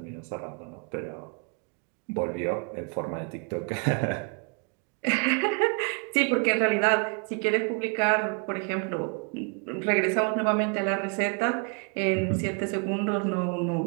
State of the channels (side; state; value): left; quieter; 38.3 dB